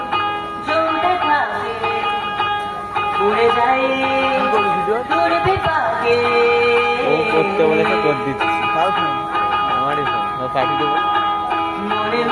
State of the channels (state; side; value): identical; both; correlation 1.00